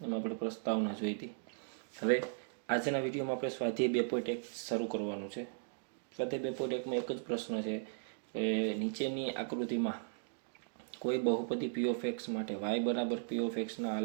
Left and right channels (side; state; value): left; silent; digital silence